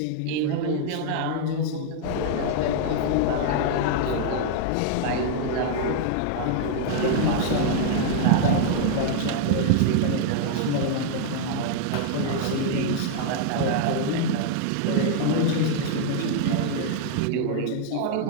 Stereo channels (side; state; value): both; different; correlation -0.01